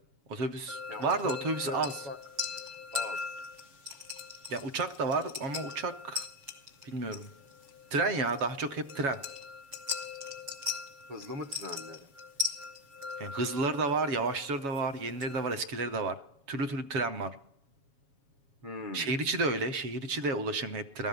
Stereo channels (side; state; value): left; late; 7.2 ms